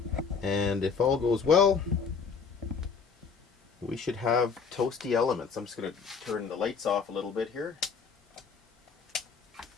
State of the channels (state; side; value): quieter; right; 5.8 dB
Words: And if all goes well, we should have toasty elements. I'm just going to turn the lights off a little bit here.